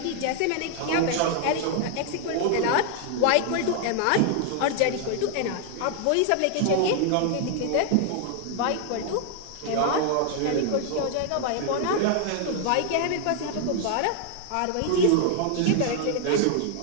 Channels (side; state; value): both; different; correlation 0.00